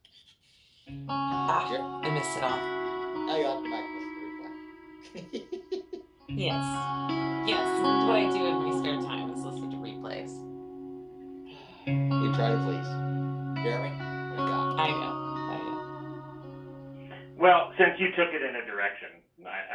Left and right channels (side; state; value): both; identical; correlation 1.00